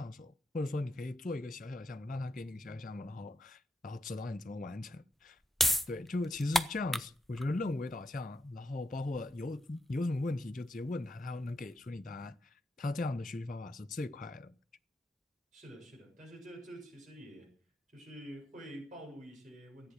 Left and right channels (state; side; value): normal; both; correlation 0.83